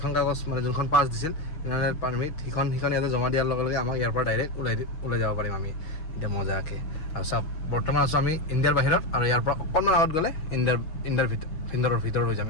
কাগজ মানে যোনখন পাছ দিছিল পাৰ্মিট সেইখন ইয়াতে জমা দিয়াৰ লগে লগে আমাক ইয়াৰ পৰা ডাইৰেক্ট ওলাই যাব পাৰিম আমি এতিয়া মজাকৈ আৰু চাওক বৰ্তমান আছোঁ আমি ইণ্ডিয়াৰ বাহিৰত আৰু ইয়াৰ পৰা অকণমান আগত গ'লে ইণ্ডিয়াৰ ভিতৰত হৈ যাম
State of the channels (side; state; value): right; late; 6.2 ms